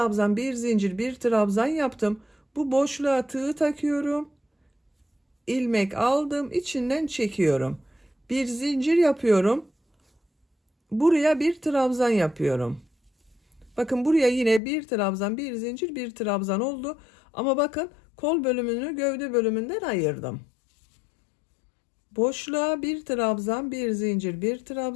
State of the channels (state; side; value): drops out; right; at 14.6 s